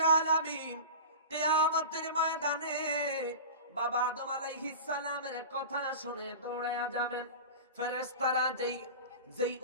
আলামিন কিয়ামতের ময়দানে বাবা আদম আলাইহিস সালামের কথা শুনে দৌড়ায়া যাবেন। ফেরেশতারা যেই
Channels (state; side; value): inverted; both; correlation -0.32